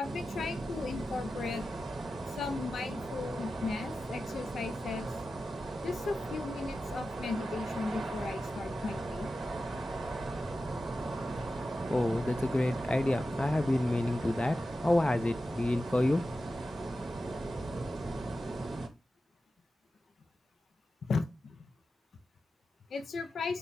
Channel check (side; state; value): both; normal; correlation 0.92